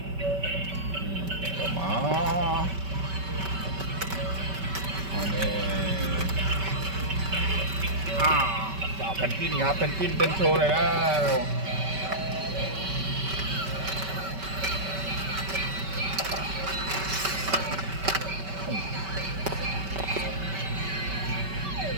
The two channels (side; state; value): left; late; 5.2 ms